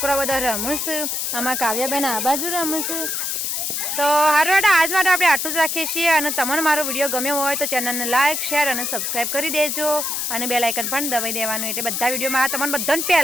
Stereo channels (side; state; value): left; noise; hiss, 1 dB below the sound